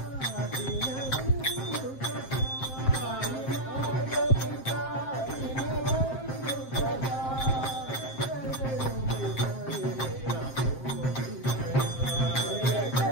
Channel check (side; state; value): right; late; 7.6 ms